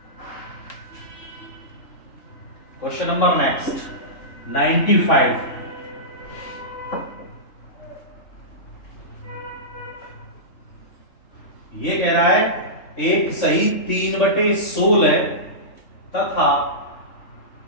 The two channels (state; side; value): late; right; 3.6 ms